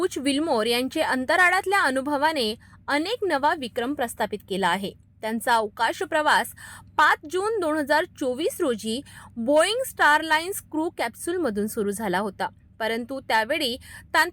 विल्मोर यांचे अंतराळातल्या अनुभवाने अनेक नवा विक्रम प्रस्थापित केला आहे। त्यांचा अवकाश प्रवास 5 जून 2024 रोजी बोईंग स्टारलाइन्स क्रू कॅप्सूलमधून सुरू झाला होता, परंतु त्यावेळी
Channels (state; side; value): identical; both; correlation 1.00